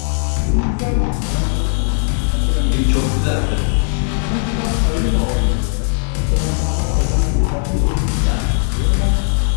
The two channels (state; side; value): silent; right; 62 dB below the other